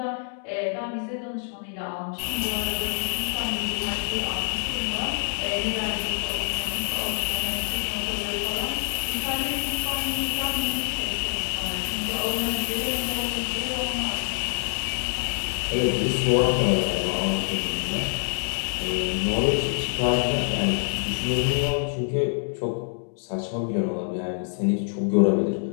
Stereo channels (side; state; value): right; silent; 61 dB below the other